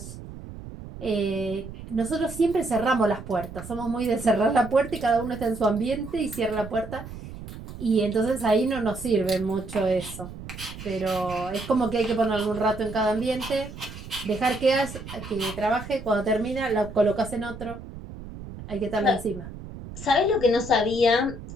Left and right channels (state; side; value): noise; right; rumble, 12 dB below the sound